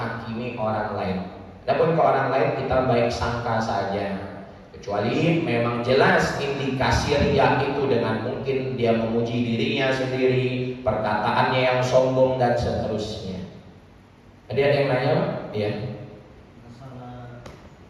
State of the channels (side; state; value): both; identical; correlation 1.00